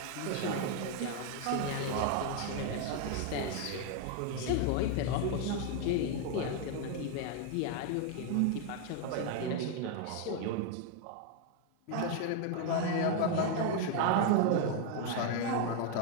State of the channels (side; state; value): both; different; correlation 0.00